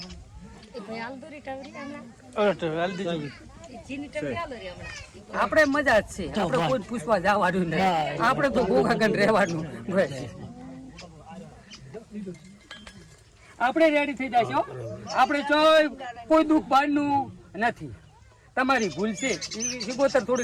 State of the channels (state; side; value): identical; both; correlation 1.00